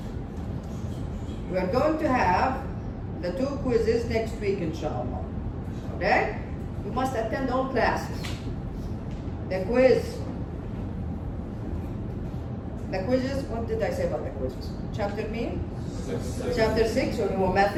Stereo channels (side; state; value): both; identical; correlation 1.00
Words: We are going to have the 2 quizzes next week, inshallah. Okay? You must attend all classes. The quizzes, what did I say about the quizzes? Chapter mean? Chapter 6 on your